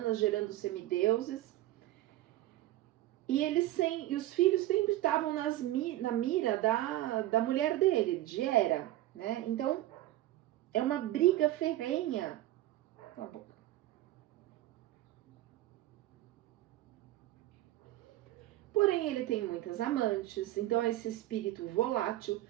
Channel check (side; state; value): left; quieter; 15.3 dB